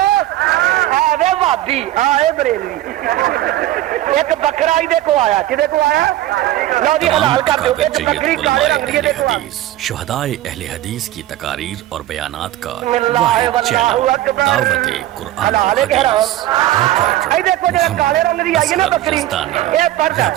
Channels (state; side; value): quieter; left; 14.5 dB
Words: اے بھابی اے بریلوی ایک بکرا ہی کو آیا کدے کو آیا لو جی حلال کر دو ایک بکری کالے رنگ کی دے کو آیا شہدائے اہل حدیث کی تقاریر اور بیانات کا واحد چینل دعوت قرآن و حدیث اے دیکھو جو کالے رنگ دی آئی ہے نا بکری اے پردہ